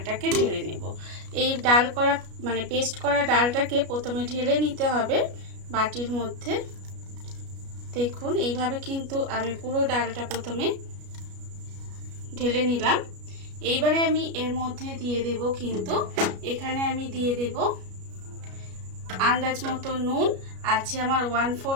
ঢেলে নেব। এই ডাল করা পেস্ট করা ডালটাকে প্রথমে ঢেলে নিতে হবে বাটির মধ্যে। দেখুন এইভাবে কিন্তু আমি পুরো ডালটা প্রথমে ঢেলে নিলাম। এইবারে আমি এর মধ্যে দিয়ে দেব কিন্তু এখানে আমি দিয়ে দেব আন্দাজ মতো নুন, আছে আমার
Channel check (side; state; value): left; late; 33 ms